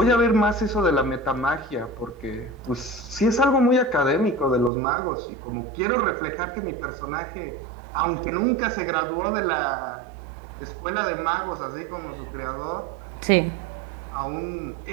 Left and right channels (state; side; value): drops out; left; at 4.7 s